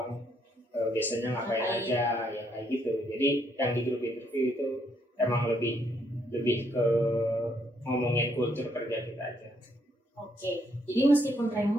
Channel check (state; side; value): normal; both; correlation 0.72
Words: biasanya ngapain aja, ya kayak gitu. Jadi yang di grup interview itu emang lebih ke ngomongin kultur kerja kita aja. Oke, jadi meskipun